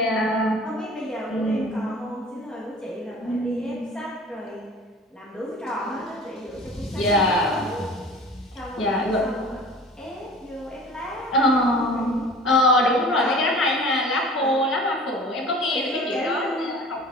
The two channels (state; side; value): normal; both; correlation 0.43